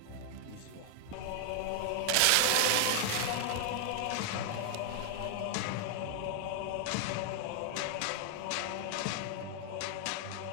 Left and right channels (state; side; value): different; both; correlation 0.00